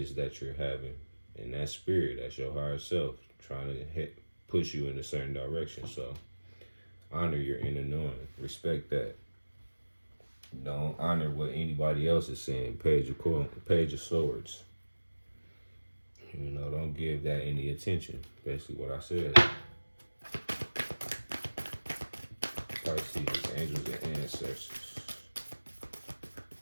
that you're having. And that spirit, that's your higher self, trying to push you in a certain direction. So honor your inner knowing. Respect that. Don't honor what anybody else is saying. Page of Swords. Don't give that any attention. Basically what I said. Pisces, angels and ancestors.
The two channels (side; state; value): both; inverted; correlation -1.00